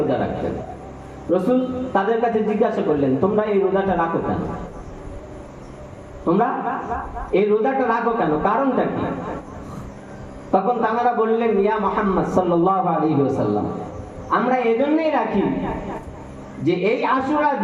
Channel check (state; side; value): identical; both; correlation 1.00